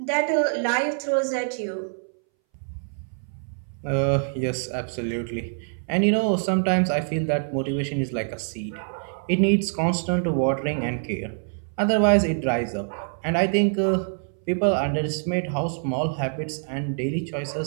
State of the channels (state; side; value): silent; left; 61 dB below the other